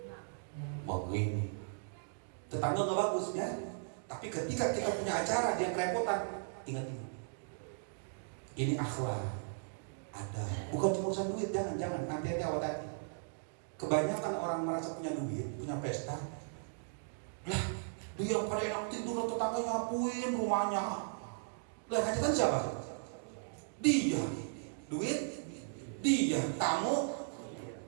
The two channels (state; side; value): silent; left; digital silence